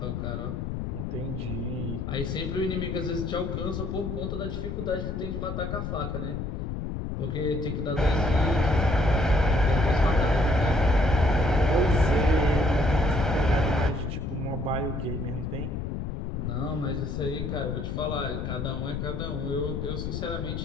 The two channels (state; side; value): noise; left; rumble, 4 dB below the sound